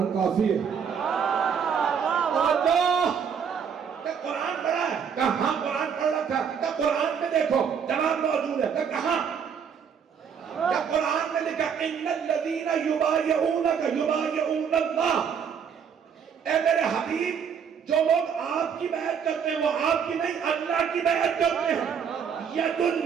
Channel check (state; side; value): quieter; left; 7.2 dB